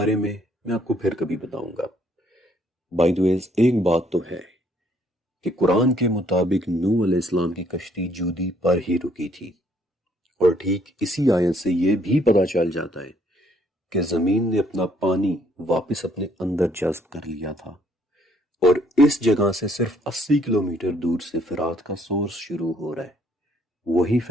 میں آپ کو پھر کبھی بتاؤں گا. بائی دی وے ایک بات تو ہے کہ قرآن کے مطابق نوح علیہ السلام کی کشتی جودی پر ہی رکی تھی، اور ٹھیک اسی آیت سے یہ بھی پتہ چل جاتا ہے کہ زمین نے اپنا پانی واپس اپنے اندر جذب کر لیا تھا. اور اس جگہ سے صرف 80 کلومیٹر دور سے فرات کا سورس شروع ہو رہا ہے، وہی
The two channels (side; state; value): both; normal; correlation 0.66